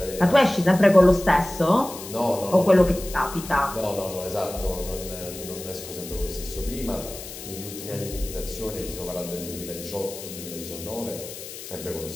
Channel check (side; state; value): left; noise; hiss, 12 dB below the sound